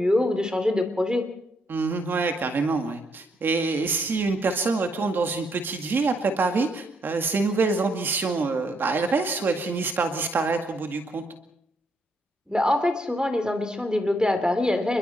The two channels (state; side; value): normal; both; correlation 0.74